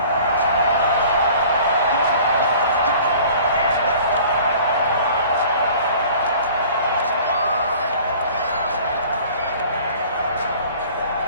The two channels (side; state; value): both; inverted; correlation -0.48